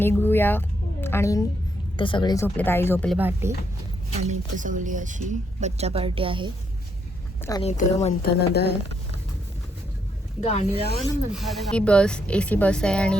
आणि ते सगळे झोपले. आई झोपले भाटी. आणि इथं सगळी अशी बच्चा पार्टी आहे. आणि इथं मंथन नदी आहे. गाणी लावा ना मंथन. ही बस AC बस आहे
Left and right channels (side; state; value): both; normal; correlation 0.76